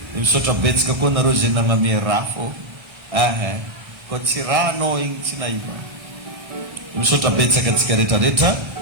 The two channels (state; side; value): late; left; 1.3 ms